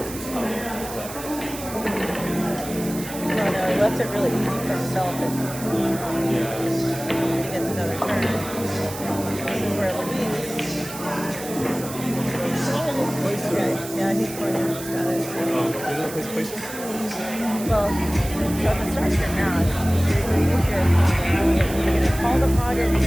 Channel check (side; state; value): right; noise; hiss, 12 dB below the sound